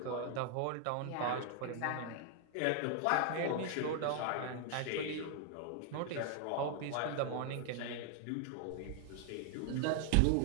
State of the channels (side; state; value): both; different; correlation 0.00